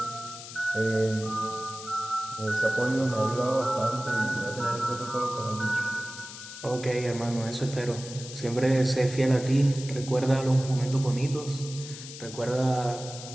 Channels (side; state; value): left; noise; hiss, 12 dB below the sound